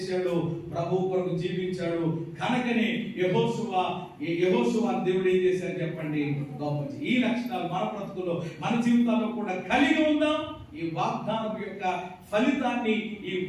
ప్రభు కొరకు జీవించాడు. కనుకనే యెహోషువ దేవుడు ఏం చేశాడు చెప్పండి? గొప్ప. ఈ లక్షణాలు మన బ్రతుకులో, మన జీవితాల్లో కూడా కలిగి ఉందాం. ఈ వాగ్దానం యొక్క ఫలితాన్ని, ఈ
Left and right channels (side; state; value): both; identical; correlation 1.00